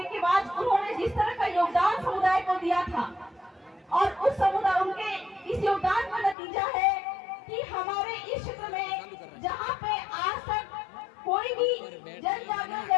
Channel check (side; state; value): right; drops out; at 6.4 s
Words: के बाद उन्होंने जिस तरह का योगदान समुदाय को दिया था और उस समुदाय उनके इस योगदान का नतीजा है कि हमारे इस क्षेत्र में जहाँ पे आज तक कोई भी जन जागरण